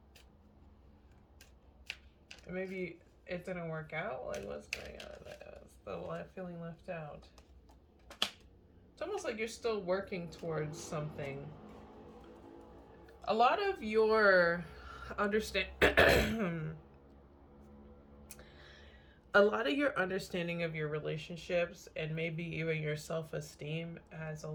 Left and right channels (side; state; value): both; identical; correlation 1.00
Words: And maybe it didn't work out. Like, what's going on? Still feeling left out. It's almost like you're still working towards something. A lot of your understanding of your relationships and maybe even your self-esteem has a